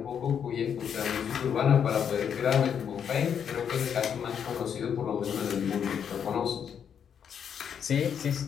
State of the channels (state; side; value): quieter; right; 7.9 dB